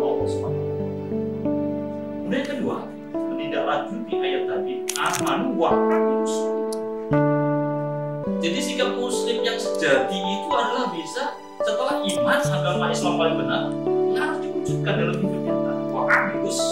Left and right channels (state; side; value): identical; both; correlation 1.00